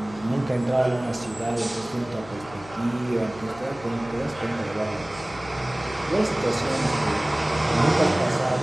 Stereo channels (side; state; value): left; noise; hum, 19 dB below the sound